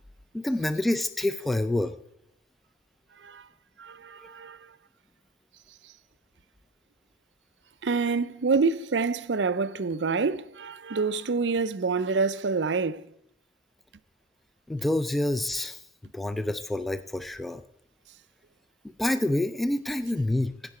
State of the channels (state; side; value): normal; both; correlation 0.44